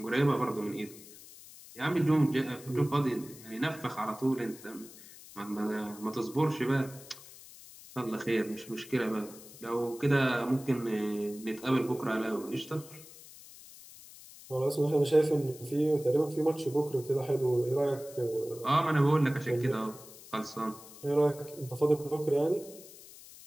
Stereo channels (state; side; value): noise; left; hiss, 18 dB below the sound